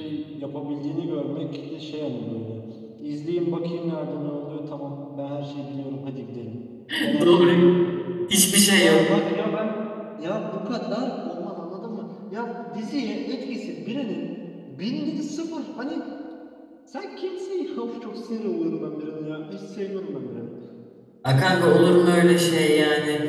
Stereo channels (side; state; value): both; identical; correlation 1.00